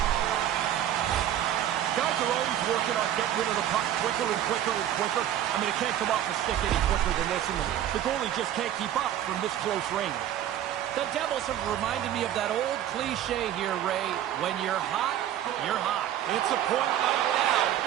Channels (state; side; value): quieter; left; 11.4 dB